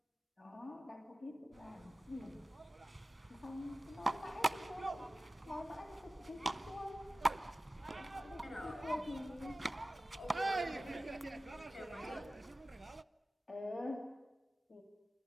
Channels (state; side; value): normal; both; correlation 0.96